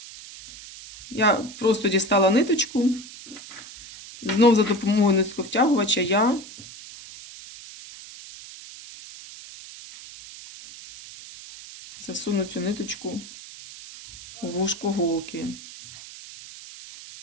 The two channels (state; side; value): noise; right; hiss, 16 dB below the sound